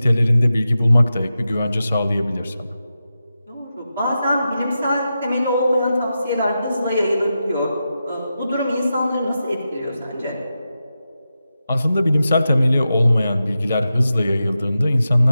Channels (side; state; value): both; inverted; correlation -0.90